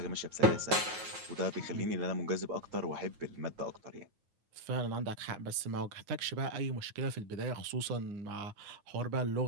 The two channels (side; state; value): left; late; 9.3 ms